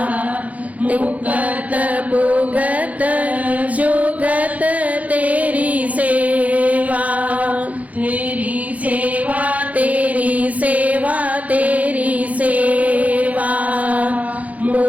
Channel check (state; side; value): late; left; 0.071 ms